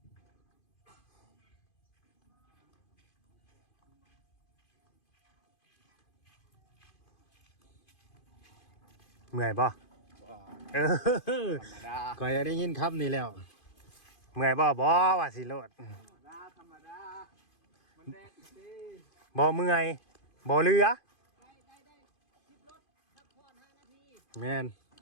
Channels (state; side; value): late; right; 2.5 ms